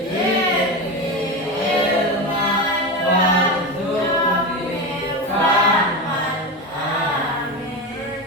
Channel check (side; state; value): both; normal; correlation 0.20